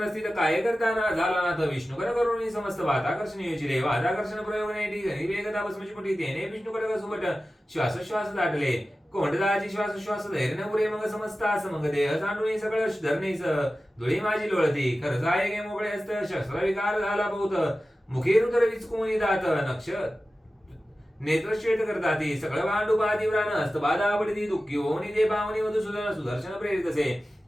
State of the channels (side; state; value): both; normal; correlation 0.95